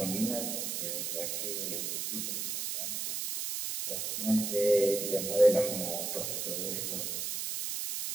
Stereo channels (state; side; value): noise; right; hiss, 2 dB below the sound